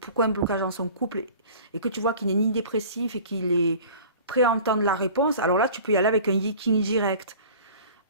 un blocage dans son couple, et que tu vois qu'il n'est ni dépressif et qu'il est prêt à entendre la réponse, alors là, tu peux y aller avec un Yiking direct.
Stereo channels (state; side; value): inverted; both; correlation -0.43